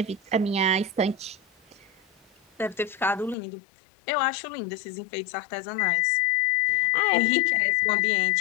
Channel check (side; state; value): right; drops out; at 3.4 s